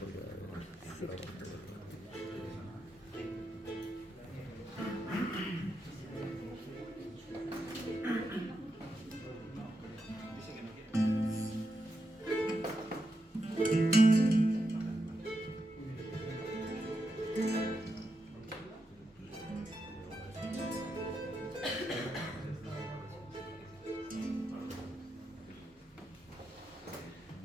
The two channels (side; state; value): both; normal; correlation 0.85